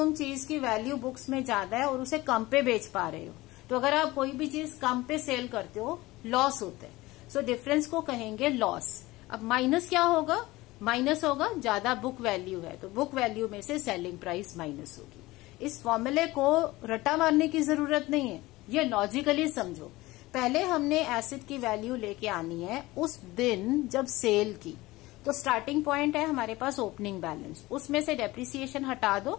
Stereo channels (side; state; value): right; quieter; 19.5 dB